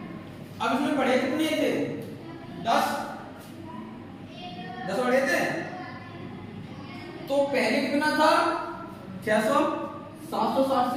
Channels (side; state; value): both; identical; correlation 1.00